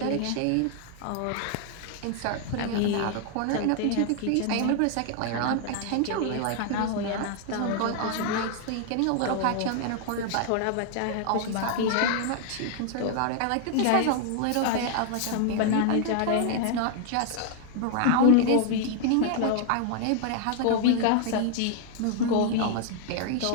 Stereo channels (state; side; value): different; both; correlation 0.00